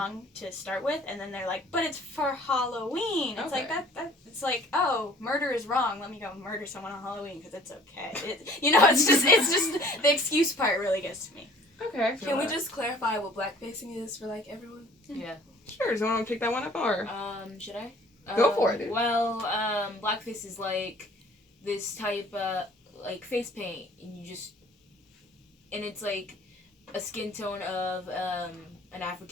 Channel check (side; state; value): both; normal; correlation 0.52